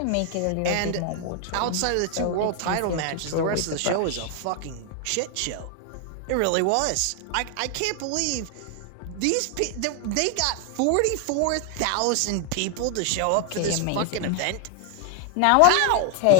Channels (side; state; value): both; different; correlation 0.00